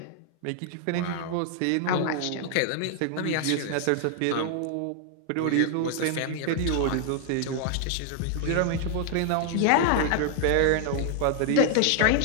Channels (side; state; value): both; different; correlation 0.00